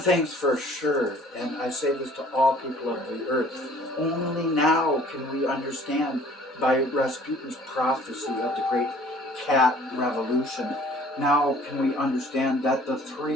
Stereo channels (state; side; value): normal; both; correlation 0.53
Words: for sure, and I say this to all people of the earth, only now can we understand by Rasputin's prophecy of the great cat revolution. Now can we understand that the